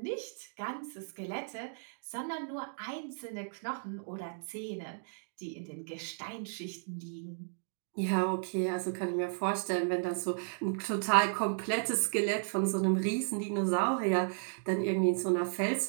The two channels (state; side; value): silent; left; digital silence